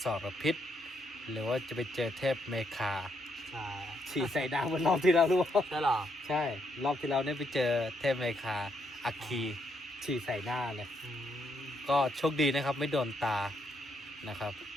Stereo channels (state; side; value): normal; both; correlation 0.76